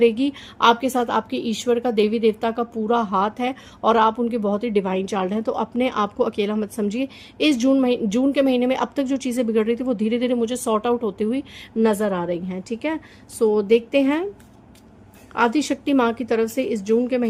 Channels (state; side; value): identical; both; correlation 1.00